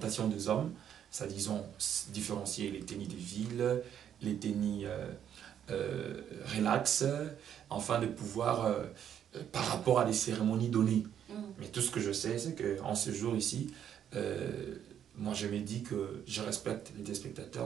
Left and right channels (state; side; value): quieter; left; 9.4 dB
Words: des hommes. Ça, disons, différencier les tennis de ville, les tennis relax, afin de pouvoir, par rapport à des cérémonies données. Mais tout ce que je sais, c'est qu'en ce jour ici, moi je me dis que je respecte les